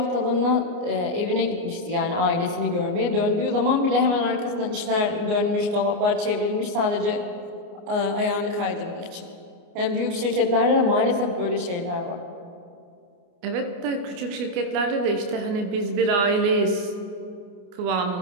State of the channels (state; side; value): late; left; 29 ms